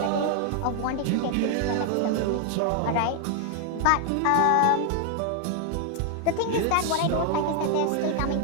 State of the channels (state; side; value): different; both; correlation 0.00